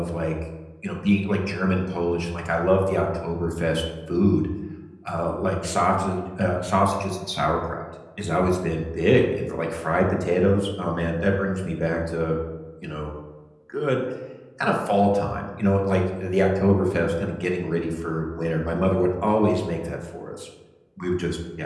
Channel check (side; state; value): both; identical; correlation 1.00